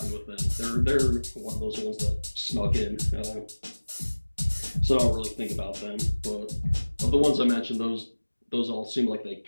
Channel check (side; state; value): both; inverted; correlation -1.00